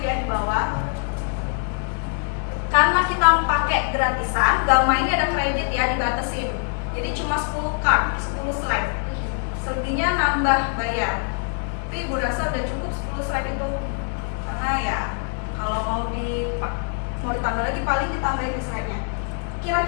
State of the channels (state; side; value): silent; right; 63 dB below the other